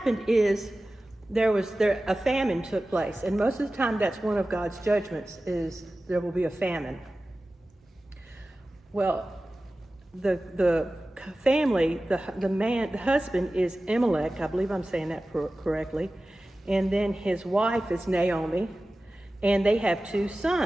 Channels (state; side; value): normal; both; correlation 0.96